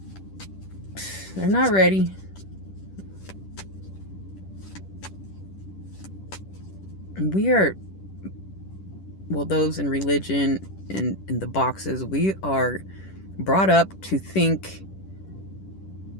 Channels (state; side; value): late; right; 10 ms